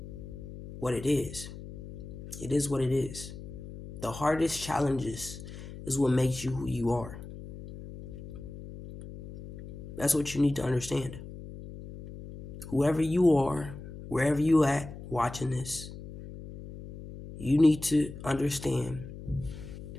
what it is. It is what it is. The hardest challenges is what makes you who you are. That's what you need to understand. Whoever you are, wherever you at watching this, you need to understand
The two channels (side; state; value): left; noise; hum, 13 dB below the sound